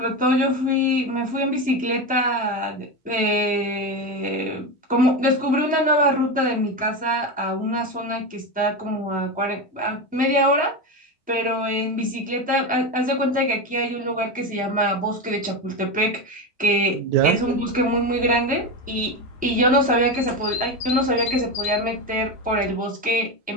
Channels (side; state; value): both; normal; correlation 0.17